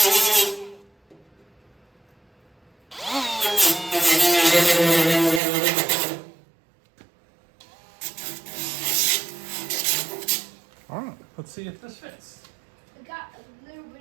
All right, let's see if this fits. I got a little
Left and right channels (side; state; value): left; drops out; at 5.4 s